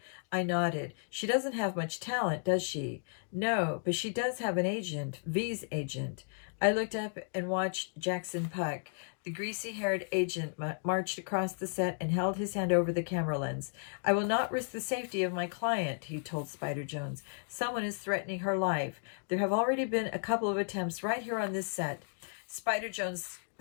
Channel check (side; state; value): right; silent; digital silence